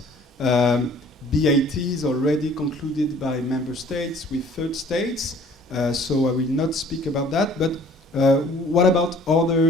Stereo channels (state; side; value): normal; both; correlation 0.53